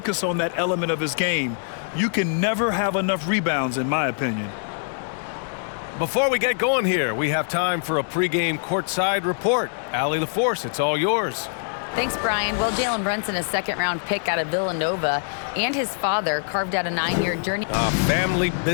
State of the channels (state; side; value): silent; right; digital silence